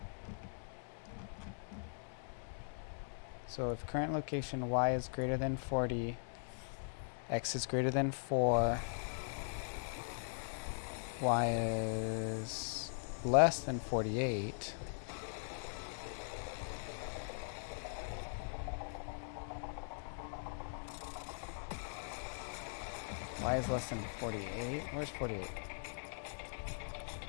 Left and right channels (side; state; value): right; silent; digital silence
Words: so if current location y is greater than 40, x is greater than 4, y is less than 48, y is less than 48. Where's 48?